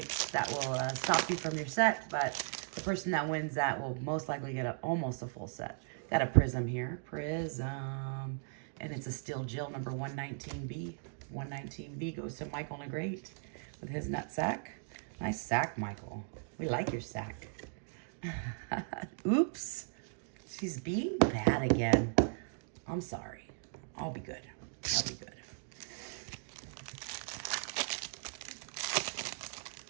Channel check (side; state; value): left; silent; digital silence